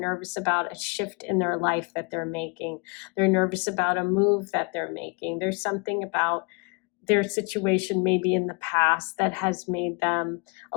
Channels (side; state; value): right; quieter; 31.9 dB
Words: about a shift in their life that they're making. They're nervous about a move that they're making. There's something about their situation maybe in the past that has made them